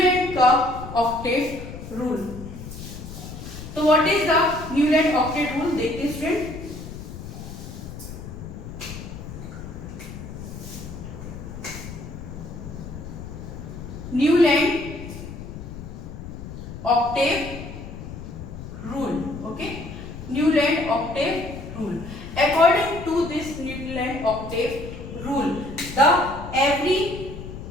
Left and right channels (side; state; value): left; noise; rumble, 11 dB below the sound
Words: न्यूलैंड का ऑक्टेट रूल। तो what is the Newland octet rule, देखते हैं student. Newland octave rule, okay, Newland octave rule. According to this Newland octave rule, the every